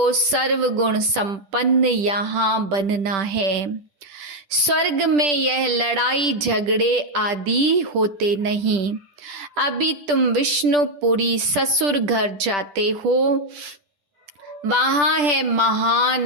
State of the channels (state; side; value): late; left; 10 ms